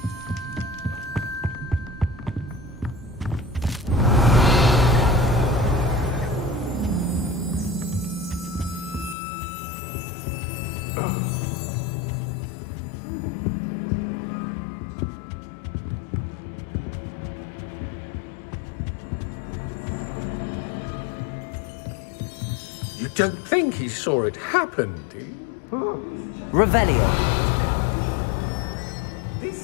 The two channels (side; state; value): right; drops out; at 9.2 s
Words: You don't think he saw it happen, do you? Revelio.